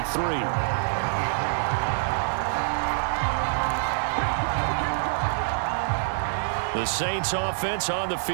The Saints offense on the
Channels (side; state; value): left; silent; digital silence